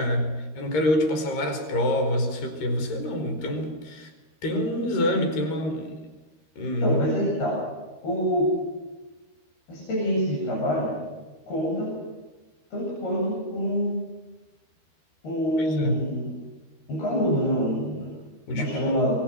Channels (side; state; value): right; late; 13 ms